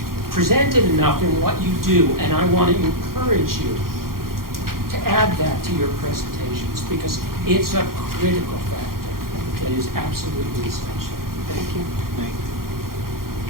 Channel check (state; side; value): late; left; 0.92 ms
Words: presented enough in what you do, and I want to encourage you to add that to your presentations, because it's a critical factor that is absolutely essential. Thank you.